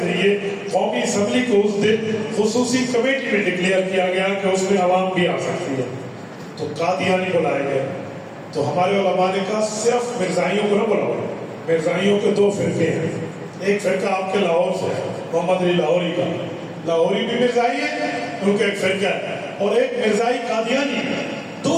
قومی اسمبلی کو اس دن خصوصی کمیٹی میں ڈکلیئر کیا گیا کہ اس میں عوام بھی آ سکتی ہے. تو قادیانی بلائے گئے. تو ہمارے علماء نے کہا صرف مرزائیوں کو نہ بلاؤ. مرزائیوں کے دو فرقے ہیں، ایک فرقہ آپ کے لاہور سے ہے محمد علی لاہوری کا، لاہوری بھی مرزائی ہے ان کا ایک فرقہ ہے، اور ایک مرزائی قادیانی.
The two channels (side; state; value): both; identical; correlation 1.00